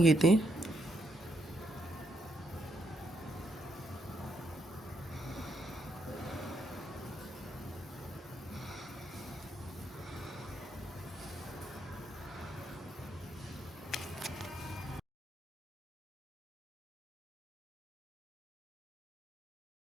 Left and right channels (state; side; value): normal; both; correlation 0.77